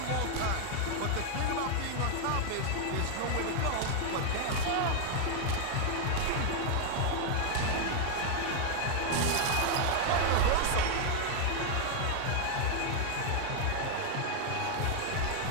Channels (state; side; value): different; both; correlation 0.00